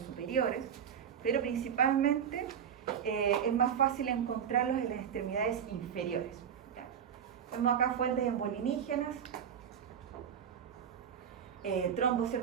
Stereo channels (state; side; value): quieter; left; 8.2 dB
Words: pero principalmente es más fácil encontrarlos en las extremidades inferiores. ¿Ya? Vemos acá fuentes embolinígenas, trombos,